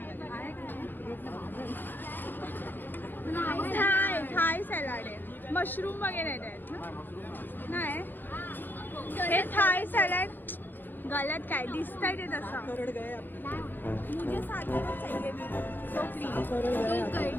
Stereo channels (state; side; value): late; right; 0.092 ms